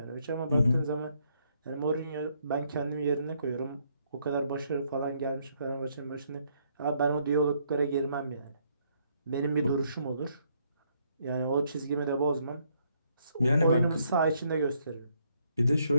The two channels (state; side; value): inverted; both; correlation -0.71